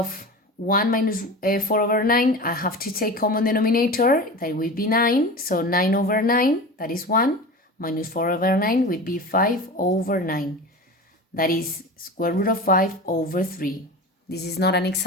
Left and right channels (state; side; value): normal; both; correlation 0.31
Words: 1 minus 4 over 9. I have to take common denominator, that would be 9. So 9 over 9, that is 1, minus 4 over 9 would be 5 over 9. That is square root of 5 over 3. This is not an